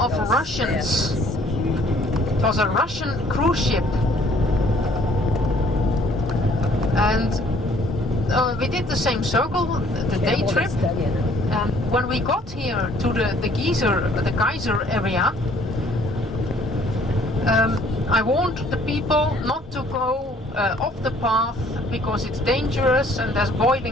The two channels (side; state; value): both; normal; correlation 0.59